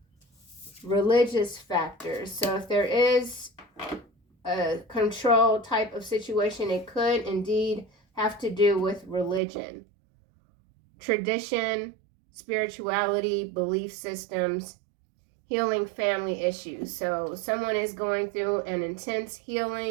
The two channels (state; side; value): drops out; left; at 9.4 s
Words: Religious factors. So if there is a control type of situation, it could indeed have to do with religion, tradition, spirituality, belief systems, healing family issues. So someone is going through an intense